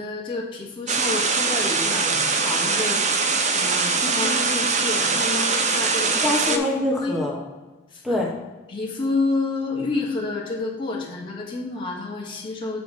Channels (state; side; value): normal; both; correlation 0.17